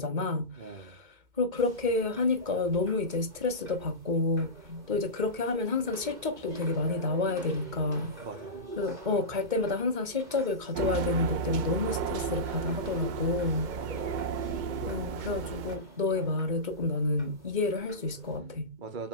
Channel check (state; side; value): late; left; 2.2 ms